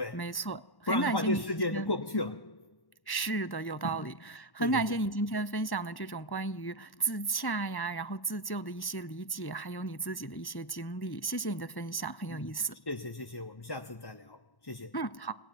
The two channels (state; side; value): late; right; 1.1 ms